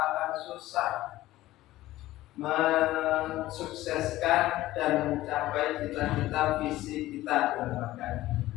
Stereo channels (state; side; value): quieter; right; 16.1 dB